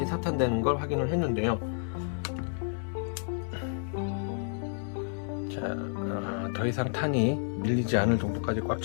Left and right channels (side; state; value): right; silent; digital silence